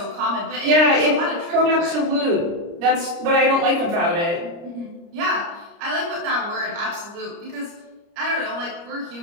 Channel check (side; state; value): left; late; 29 ms